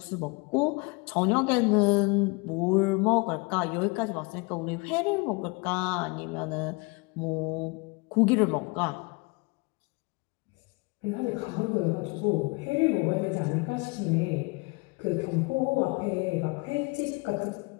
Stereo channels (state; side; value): quieter; right; 28.3 dB